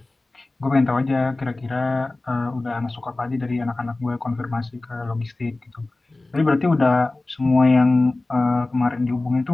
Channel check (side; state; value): right; quieter; 3.0 dB